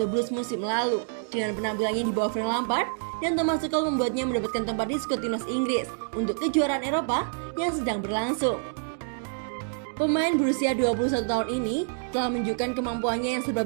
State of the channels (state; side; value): silent; left; digital silence